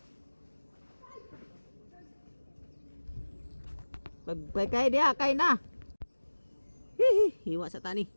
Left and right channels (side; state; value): both; inverted; correlation -1.00